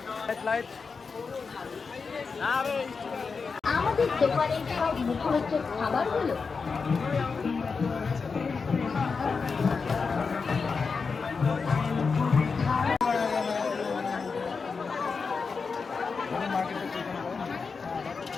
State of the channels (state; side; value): quieter; right; 5.0 dB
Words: 100। আমাদের দোকানের সব মুখরোচক খাবারগুলো